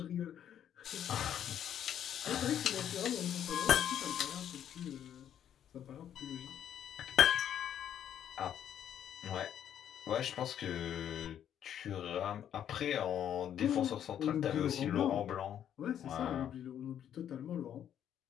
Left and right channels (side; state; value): right; quieter; 9.9 dB